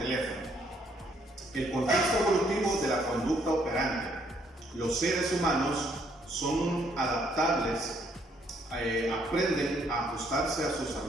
El contexto evolutivo de la conducta operante. Los seres humanos son adaptables, aprenden a ajustarse a sus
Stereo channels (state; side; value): normal; both; correlation 0.69